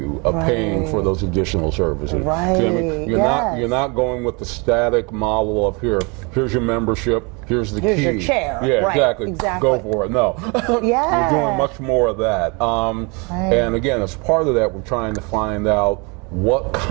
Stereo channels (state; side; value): quieter; left; 30.4 dB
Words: of paying for those additional services. You're not going with the static model of here's your membership, here's the key. Here's your chair. Exactly. Go for it. No. We're doing much more of that. And again, as part of that, we're trying to find out what